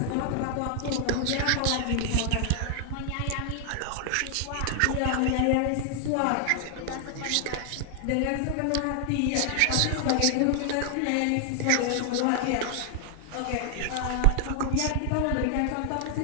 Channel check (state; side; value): different; both; correlation 0.00